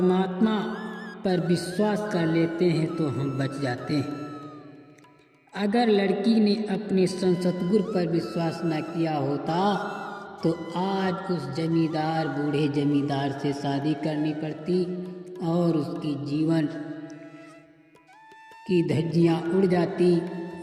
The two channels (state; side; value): identical; both; correlation 1.00